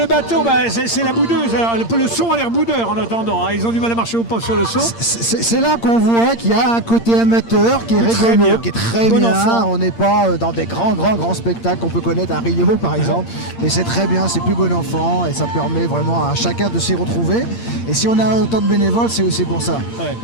bateau, c'est la boudeuse. Alors, le son a l'air boudeur en attendant. Hein. Ils ont du mal à marcher au pas sur le son. C'est là qu'on voit qu'il y a un côté amateur qui est rigolo, qui est très bon bien. Enfant. On n'est pas dans des grands spectacles qu'on peut connaître à Rio par exemple. Mais c'est très bien, c'est plus bon enfant et ça permet vraiment à chacun de s'y retrouver. Et si on a autant de bénévoles, c'est aussi pour ça. Ouais.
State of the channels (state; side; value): late; right; 8.7 ms